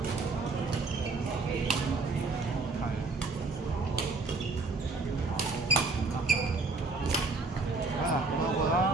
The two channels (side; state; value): left; quieter; 3.7 dB